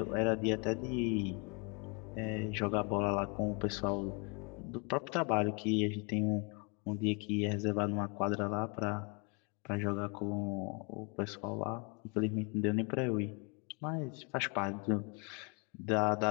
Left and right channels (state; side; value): quieter; right; 32.4 dB